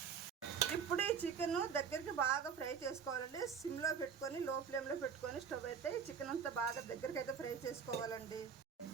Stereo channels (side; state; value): left; quieter; 6.7 dB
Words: ఇప్పుడు ఈ చికెన్ దగ్గరికి బాగా ఫ్రై చేసుకోవాలండి. సిమ్లో పెట్టుకొని లో ఫ్లేమ్లో పెట్టుకొని స్టవ్ అయితే ఈ చికెన్ అంతా బాగా దగ్గరికి అయితే ఫ్రై చేసుకోవాలండి.